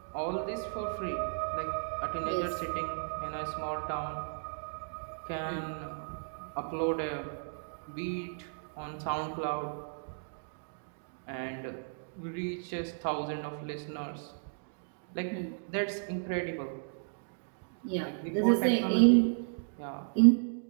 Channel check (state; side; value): silent; left; digital silence